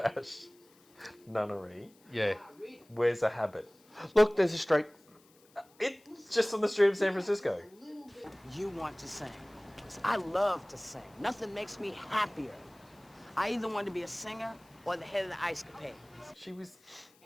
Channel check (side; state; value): left; noise; hiss, 30 dB below the sound